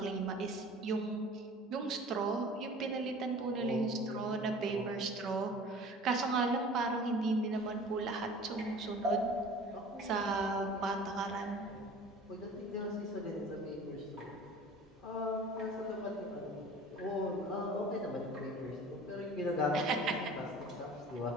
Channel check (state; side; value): normal; both; correlation 0.44